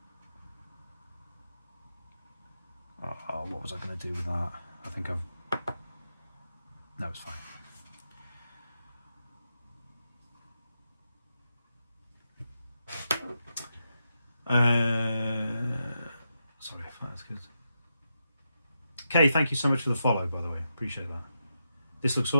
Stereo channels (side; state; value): both; inverted; correlation -0.85